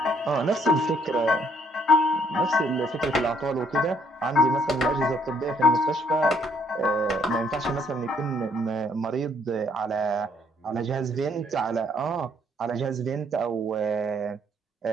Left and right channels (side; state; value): both; normal; correlation 0.67